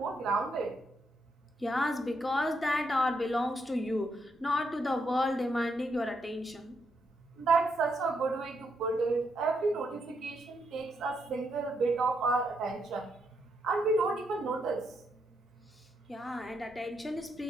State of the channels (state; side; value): normal; both; correlation 0.79